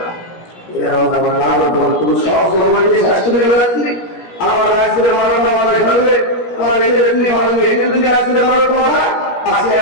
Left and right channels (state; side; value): late; right; 17 ms